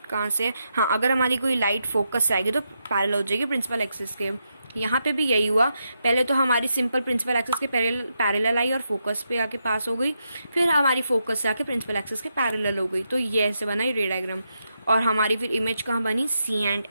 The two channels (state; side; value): inverted; both; correlation -0.83